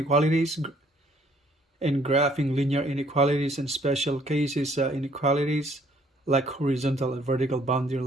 and graphing linear inequalities and special cases inequalities like horizontal and vertical boundary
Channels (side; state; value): both; normal; correlation 0.62